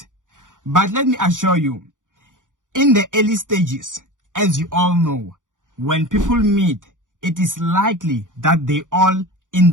But let me assure you, in the early stages, as you all know, when people meet, it is likely that they all in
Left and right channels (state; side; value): late; left; 0.87 ms